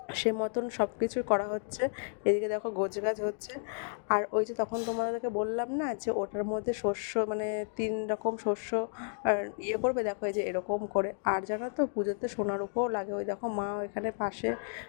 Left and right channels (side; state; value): right; silent; digital silence